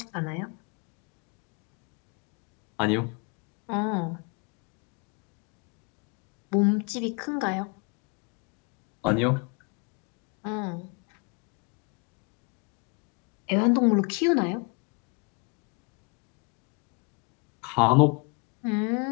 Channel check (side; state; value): right; quieter; 33.4 dB